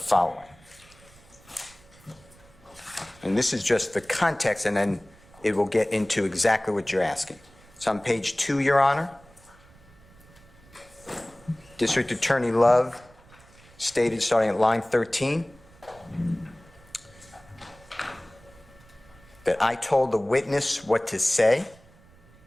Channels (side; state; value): right; noise; rumble, 26 dB below the sound